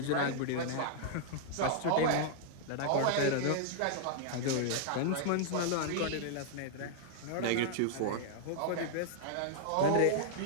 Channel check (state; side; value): different; both; correlation -0.01